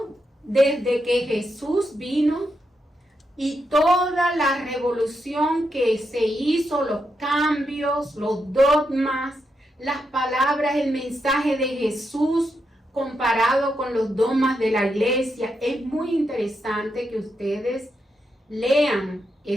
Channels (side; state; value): both; normal; correlation 0.83